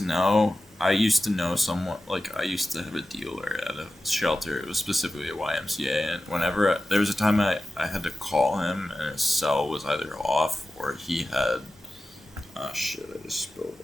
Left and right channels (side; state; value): both; normal; correlation 0.94